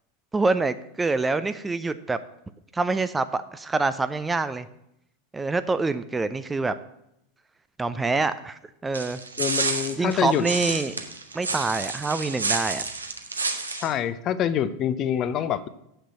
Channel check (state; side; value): normal; both; correlation 0.55